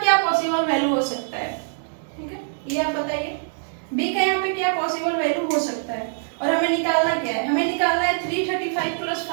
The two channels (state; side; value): silent; left; digital silence